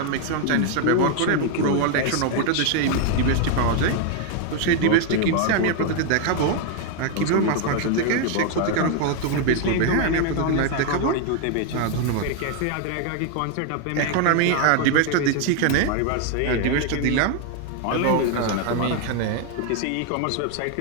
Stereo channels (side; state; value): both; different; correlation 0.01